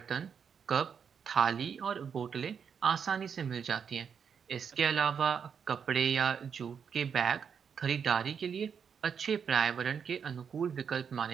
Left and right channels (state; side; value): quieter; left; 7.0 dB